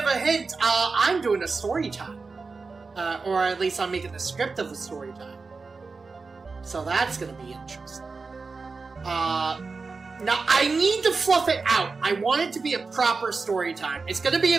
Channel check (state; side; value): quieter; left; 4.3 dB